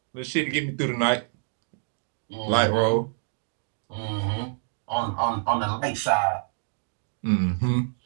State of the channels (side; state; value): left; silent; digital silence